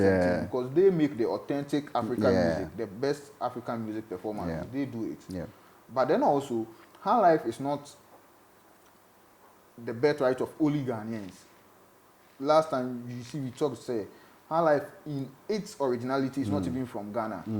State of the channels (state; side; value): identical; both; correlation 1.00